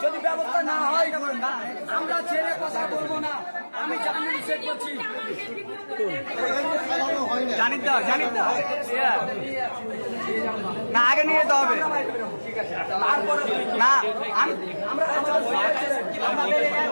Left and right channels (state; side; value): inverted; both; correlation -1.00